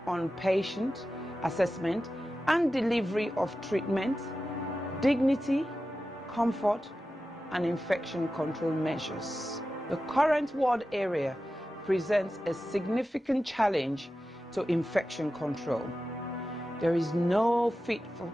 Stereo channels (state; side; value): normal; both; correlation 0.93